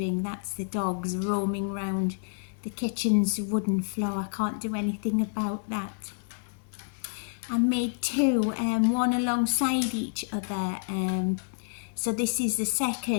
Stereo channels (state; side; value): silent; right; digital silence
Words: That's the dogs roaming round the kitchen's wooden floor. I can't do anything about that. I made two, one alongside each other. So this is the